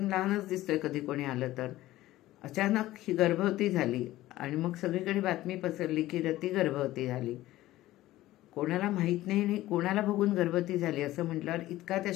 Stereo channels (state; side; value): quieter; right; 16.0 dB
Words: लहानच दिसतोय कधी कोणी आलं तर. अचानक ही गर्भवती झाली, आणि मग सगळीकडे बातमी पसरली की रती गर्भवती झाली. कोणाला माहीत नाही आणि कोणाला बघून गर्भवती झाली असं म्हटल्यावर इतका त्या